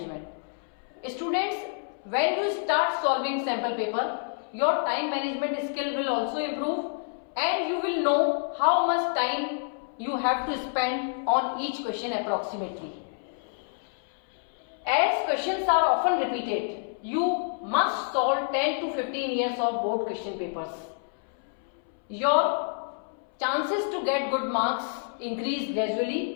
Students, when you start solving sample paper, your time management skill will also improve and you will know how much time you have to spend on each question approximately. As questions are often repeated, you must solve 10 to 15 years of board question papers. Your chances to get good marks increase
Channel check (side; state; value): right; silent; 59 dB below the other